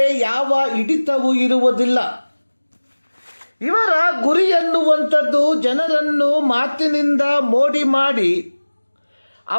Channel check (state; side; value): inverted; both; correlation -1.00